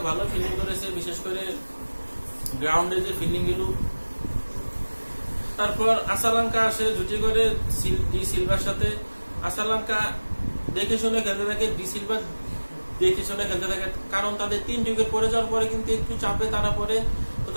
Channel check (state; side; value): inverted; both; correlation -1.00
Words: ভালো ফিল্ডিং করেছে, বিশেষ করে গ্রাউন্ডে যে ফিল্ডিং গুলো। তারপর আসালাঙ্কা আসে জুটি করে ডি সিলভার সাথে। আসালাঙ্কা দেখে শুনে খেলতে থাকে, ডি সিলভার দেখে শুনে খেলতে থাকে, কারণ তাদের 3 উইকেট পড়ে যাওয়ার পরে কিন্তু একটু চাপে তারা পড়ে। তো